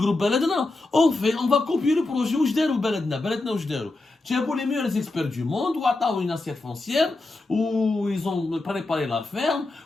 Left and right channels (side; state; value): right; quieter; 3.1 dB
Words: Beledna. On va copier le projet Oujder ou Beledna. Beledna ou Oujder. Tu as pour les meilleurs experts du monde, ou à une assiette foncière, où ils ont préparé la ferme,